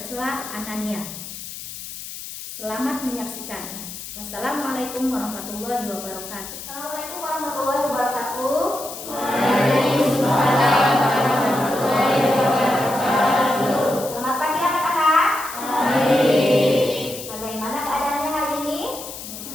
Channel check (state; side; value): noise; left; hiss, 11 dB below the sound